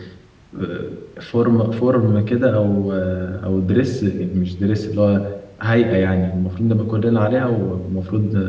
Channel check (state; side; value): identical; both; correlation 1.00